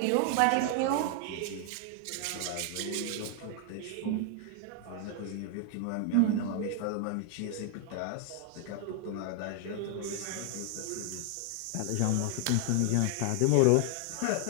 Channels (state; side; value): different; both; correlation 0.00